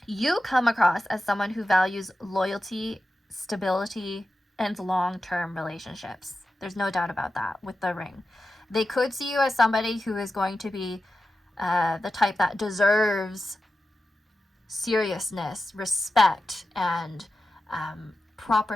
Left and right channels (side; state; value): both; normal; correlation 0.92